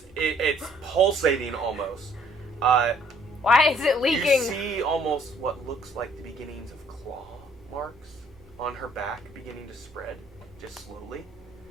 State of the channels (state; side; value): normal; both; correlation 0.62